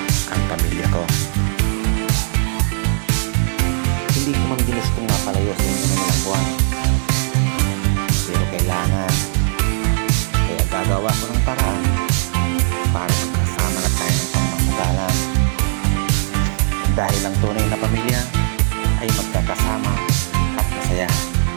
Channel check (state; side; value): silent; left; digital silence